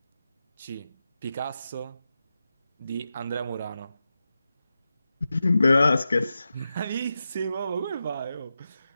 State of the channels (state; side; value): inverted; both; correlation -0.91